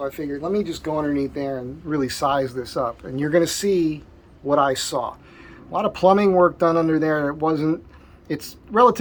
I figured, let me just go underneath there and really size this up. And you're going to see what I saw. A lot of plumbing work done under there. It's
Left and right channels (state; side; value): identical; both; correlation 1.00